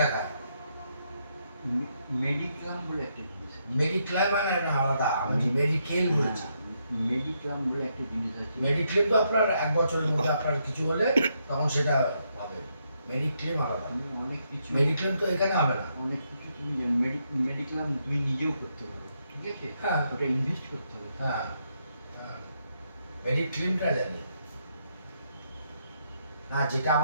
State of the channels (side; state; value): both; inverted; correlation -0.77